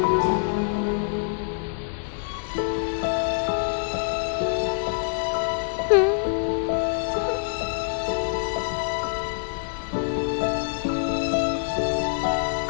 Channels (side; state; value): right; silent; 61 dB below the other